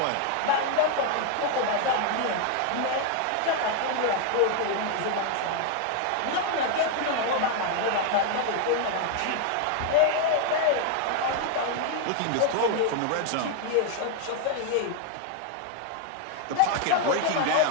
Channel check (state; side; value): different; both; correlation 0.00